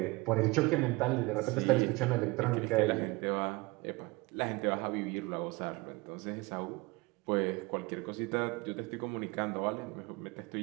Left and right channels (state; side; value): quieter; left; 23.6 dB